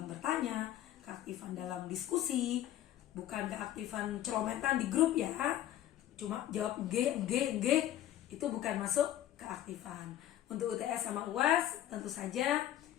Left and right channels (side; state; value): right; quieter; 12.6 dB